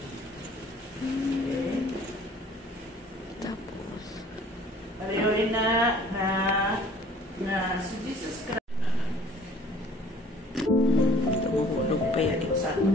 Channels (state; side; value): normal; both; correlation 0.53